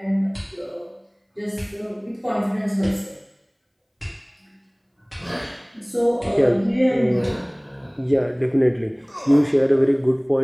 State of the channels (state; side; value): identical; both; correlation 1.00